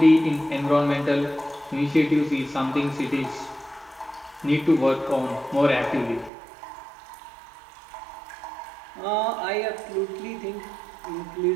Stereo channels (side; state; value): left; drops out; at 6.3 s